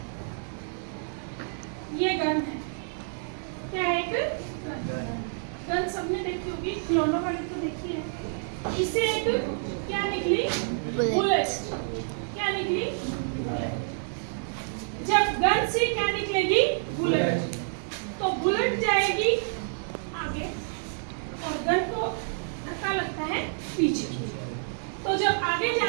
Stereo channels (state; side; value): silent; left; digital silence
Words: ये गन है, क्या है, एक गन सबने देखी होगी, खिलौनों वाली तो देखी है। इससे एक क्या निकली, बुलेट। क्या निकली, जब गन से क्या निकलेगी, बुलेट, तो बुलेट जाएगी आगे और गन को धक्का लगता है पीछे। तो तो जब आगे जा